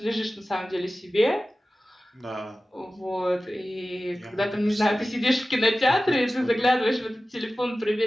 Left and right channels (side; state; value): both; normal; correlation 0.95